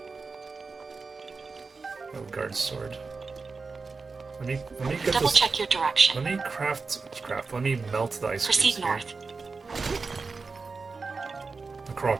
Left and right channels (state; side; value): quieter; left; 4.4 dB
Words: Oh, guard sword. Let me get Double this. check your direction. Let me craft. Let me melt the ice Proceed cubes here. north. The Korok